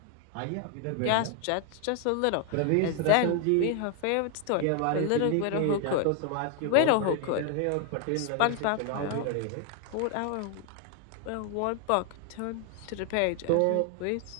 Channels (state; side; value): different; both; correlation 0.00